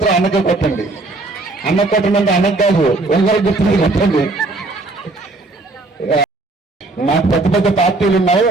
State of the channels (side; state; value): left; quieter; 3.2 dB